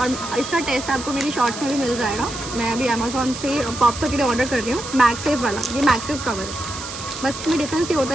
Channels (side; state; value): right; noise; hiss, 10 dB below the sound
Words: इसका टेस्ट आपको मेरी शॉर्ट्स में भी मिल जाएगा। मैं अभी अमेजोन से पॉप्सो के लिए ऑर्डर कर रही हूँ, मैक्सेफ वाला। ये मैक्सेफ कवर है, बस इसमें डिफरेंस ये होता